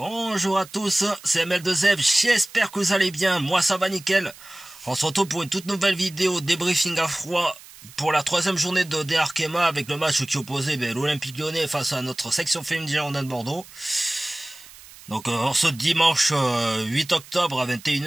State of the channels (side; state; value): right; noise; hiss, 20 dB below the sound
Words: à tous, c'est ML2F, j'espère que vous allez bien, moi ça va nickel. On se retrouve pour une toute nouvelle vidéo débriefing à froid pour la troisième journée de DR Arkema avec le match qui opposait l'Olympique Lyonnais face à notre section féminine Girondins de Bordeaux. Donc en ce dimanche 8 octobre à